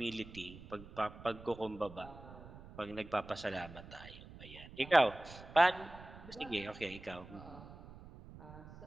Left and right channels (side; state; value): right; noise; rumble, 16 dB below the sound